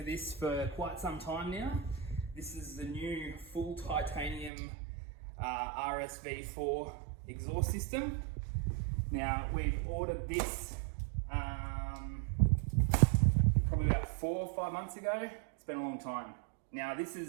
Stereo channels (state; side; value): drops out; left; at 4.5 s